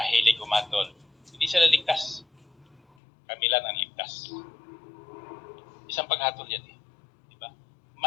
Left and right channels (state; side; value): drops out; right; at 2.8 s